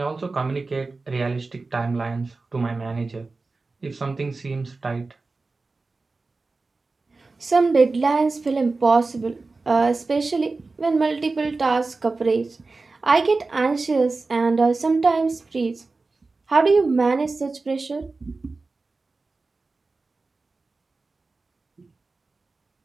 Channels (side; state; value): left; quieter; 3.7 dB